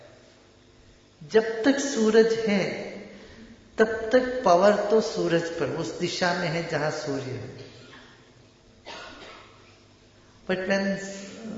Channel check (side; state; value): both; identical; correlation 1.00